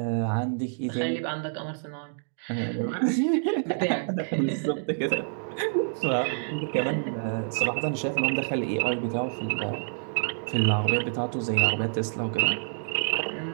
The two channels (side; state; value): left; silent; digital silence